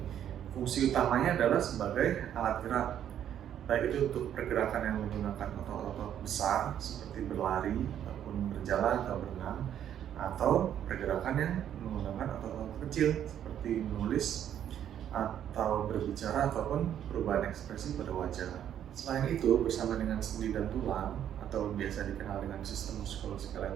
Fungsi utamanya adalah sebagai alat gerak, baik itu untuk pergerakan yang menggunakan otot-otot besar seperti berlari ataupun berjalan atau berenang, atau pergerakan yang menggunakan otot-otot kecil seperti menulis atau berbicara ataupun perubahan ekspresi pada wajah. Selain itu, bersama dengan sendi dan tulang atau biasa dikenal dengan sistem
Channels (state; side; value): quieter; left; 10.1 dB